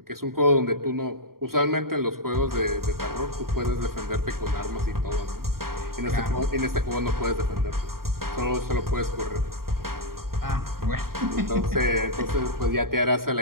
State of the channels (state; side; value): late; left; 0.93 ms